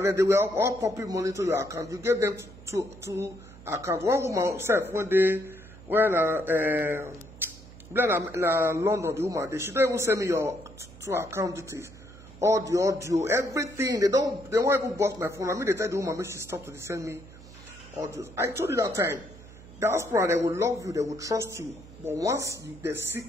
they were all popping money to your account. You gave them two accounts. One woman said when London, the woman, she don't even send me your two account details. All the audio, everything. They won't even bust my phone. I mean, they tell the woman, make she stop to send me audios. I told you that time. Diaspora, they will love you, they will trust you. But once they see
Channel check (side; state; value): right; noise; hum, 19 dB below the sound